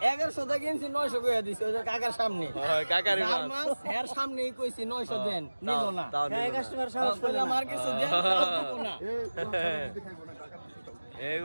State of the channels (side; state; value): both; inverted; correlation -1.00